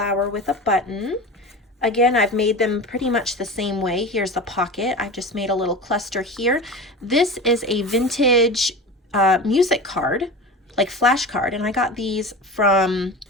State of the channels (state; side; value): normal; both; correlation 0.30